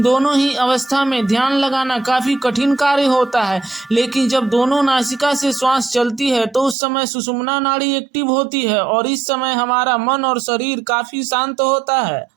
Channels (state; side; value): drops out; left; at 6.8 s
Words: दोनों ही अवस्था में ध्यान लगाना काफी कठिन कार्य होता है, लेकिन जब दोनों नासिका से श्वास चलती है तो उस समय सुषुम्ना नाड़ी एक्टिव होती है, और इस समय हमारा मन और शरीर काफी शांत होता है।